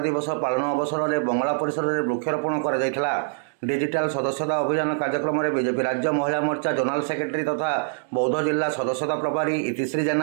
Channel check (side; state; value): left; silent; digital silence